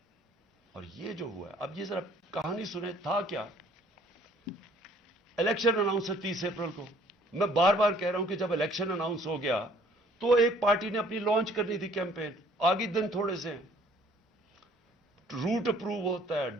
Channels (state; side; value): normal; both; correlation 0.58